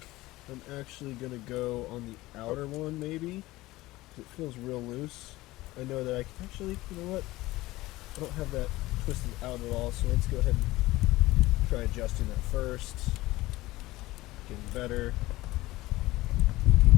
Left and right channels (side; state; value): right; quieter; 18.5 dB